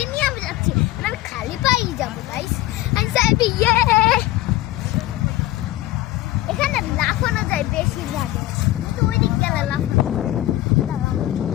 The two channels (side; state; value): right; quieter; 16.2 dB